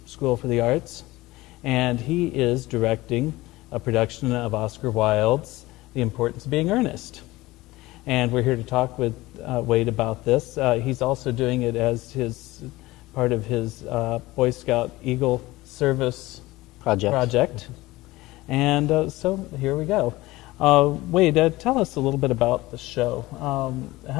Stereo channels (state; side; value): quieter; right; 19.2 dB